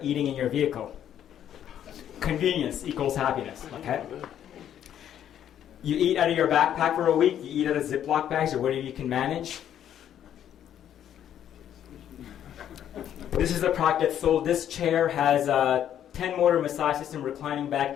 eating in your vehicle. Convenience equals happiness. Okay. You eat out of your backpack for a week. You eat out of Ziploc bags or whatever you can manage. This is a product that's sold. This chair has a 10-motor massage system, reclining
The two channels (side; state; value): right; quieter; 10.3 dB